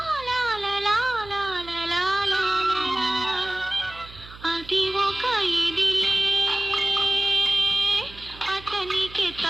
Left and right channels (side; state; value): right; noise; hum, 19 dB below the sound